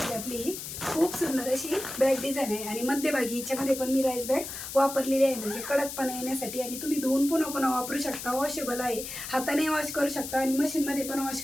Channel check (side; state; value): left; noise; hiss, 8 dB below the sound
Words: आपली ही खूप सुंदर अशी बॅग डिझाईन आहे. आणि मध्यभागी हिच्यामध्ये पण मी राईस बॅग वापरलेली आहे, म्हणजे कडकपणा येण्यासाठी. आणि तुम्ही धुवून पुन्हा पुन्हा वापरू शकता, वॉशेबल आहे, हाताने वॉश करू शकता आणि मशीनमध्ये पण वॉश